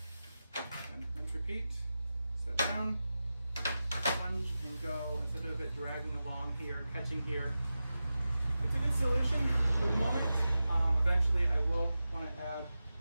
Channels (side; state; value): both; inverted; correlation -0.93